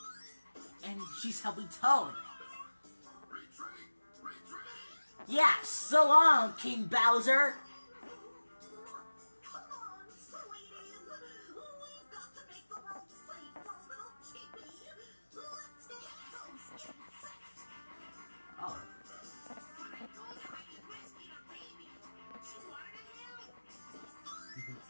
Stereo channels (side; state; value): both; inverted; correlation -1.00